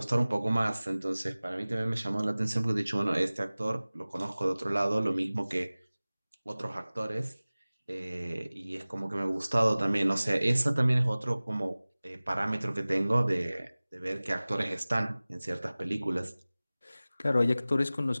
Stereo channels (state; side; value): inverted; both; correlation -0.98